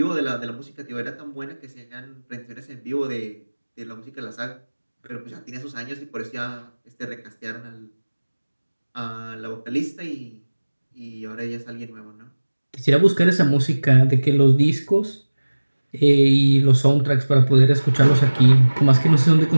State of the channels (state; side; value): inverted; both; correlation -1.00